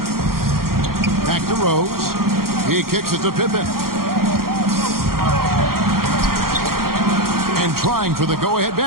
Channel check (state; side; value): late; left; 0.93 ms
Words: Back to Rose. He kicks it to Pippen. And trying for the go-ahead